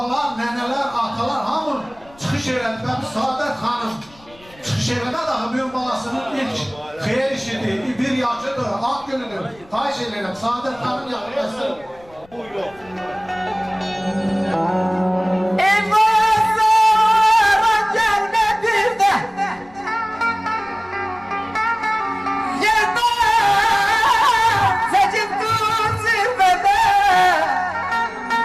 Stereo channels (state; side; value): noise; left; rumble, 27 dB below the sound